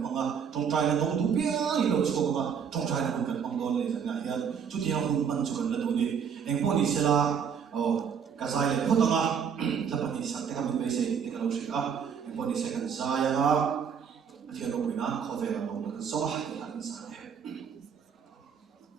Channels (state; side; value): quieter; left; 7.2 dB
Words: bằng à trong trai là đông đủ bia đi đâu chụp mà trong trai là không cần bằng đòn này chẳng hạn hiện chút thì không mình chụp cần là đủ đi em có đi xe là cái dài là không tăng à là bạn đi sang cái mình bây giờ thì cái lâu sẽ em có đi xe cần dài à thì nó bị nát khó về là đông được gió hay là cái dài